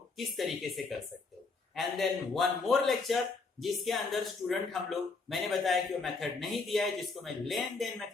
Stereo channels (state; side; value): quieter; right; 4.1 dB